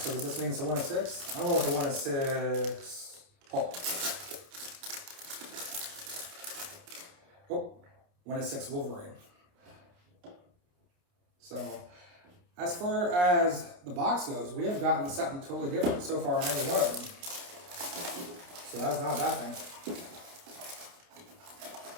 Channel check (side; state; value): left; late; 29 ms